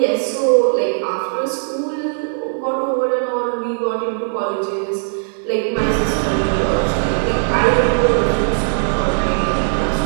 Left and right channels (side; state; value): left; silent; digital silence